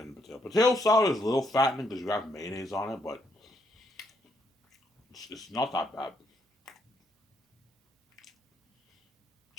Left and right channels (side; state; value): both; normal; correlation 0.74